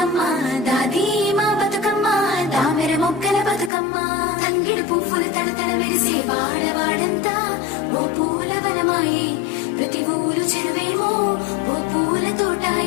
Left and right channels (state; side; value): drops out; right; at 3.7 s